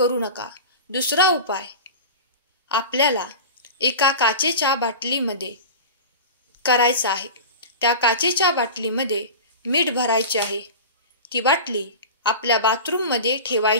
नका. दुसरा उपाय, आपल्याला एका काचेच्या बाटलीमध्ये करायचा आहे. त्या काचेच्या बाटलीमध्ये मीठ भरायचे आहे. ती बाटली आपल्या बाथरूममध्ये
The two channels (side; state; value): both; inverted; correlation -0.31